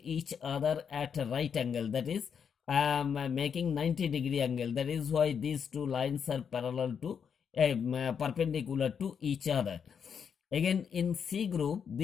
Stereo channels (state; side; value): quieter; right; 7.1 dB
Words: other at a right angle, that is making 90-degree angle. That is why these two lines are parallel to perpendicular to each other. Again in C group